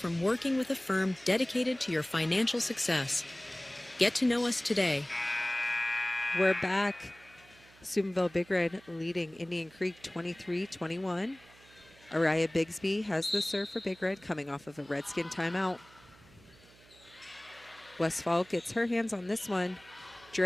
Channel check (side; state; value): right; noise; hum, 26 dB below the sound